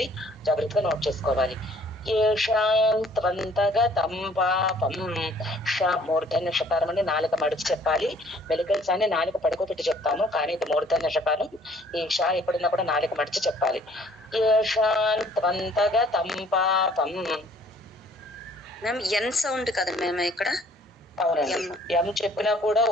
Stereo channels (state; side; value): normal; both; correlation 0.58